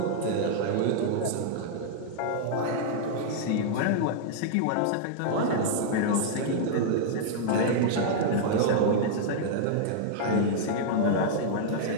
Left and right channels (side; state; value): both; different; correlation -0.01